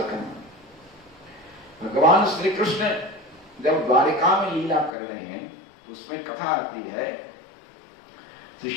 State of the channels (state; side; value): drops out; right; at 4.9 s